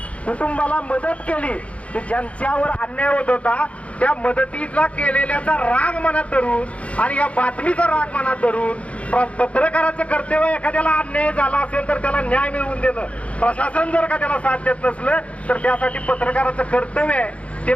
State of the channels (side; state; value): right; late; 0.064 ms